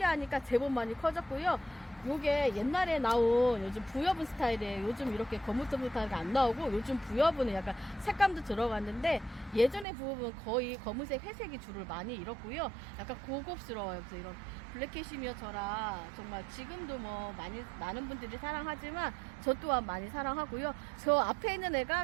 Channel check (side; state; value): left; drops out; at 9.9 s